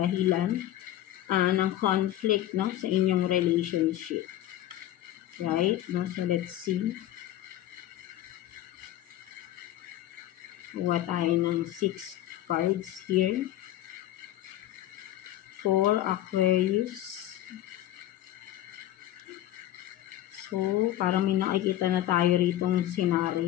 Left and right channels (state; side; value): quieter; right; 13.4 dB